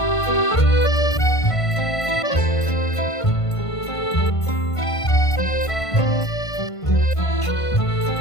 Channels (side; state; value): right; late; 1.5 ms